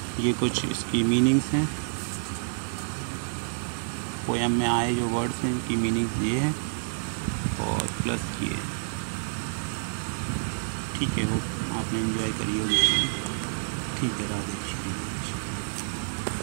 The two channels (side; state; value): left; silent; digital silence